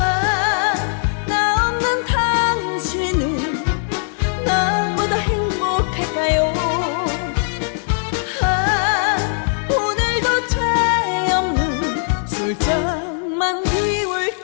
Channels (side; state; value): right; silent; 63 dB below the other